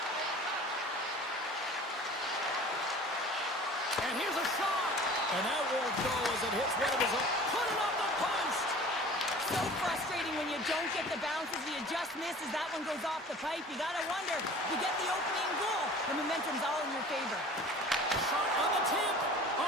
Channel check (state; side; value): normal; both; correlation 0.43